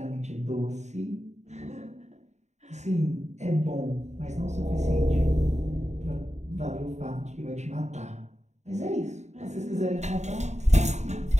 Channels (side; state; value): left; late; 0.33 ms